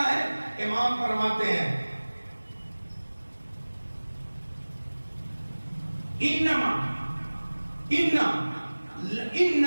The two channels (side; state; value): both; inverted; correlation -1.00